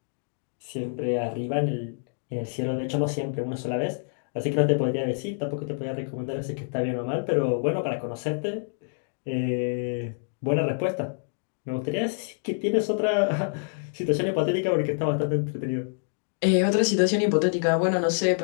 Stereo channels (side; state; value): right; silent; digital silence